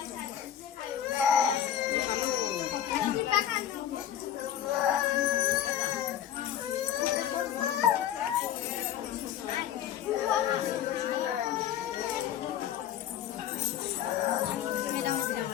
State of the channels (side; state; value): right; quieter; 10.5 dB